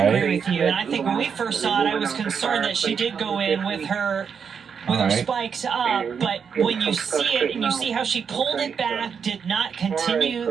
agree with you. And I think when we first saw it, I was concerned that she did go in with her spikes up, but when you see it and you see how she pulled it back, did not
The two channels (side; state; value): left; quieter; 6.7 dB